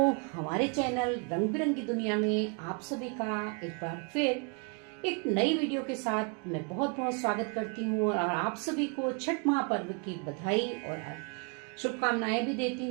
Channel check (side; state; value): left; quieter; 35.7 dB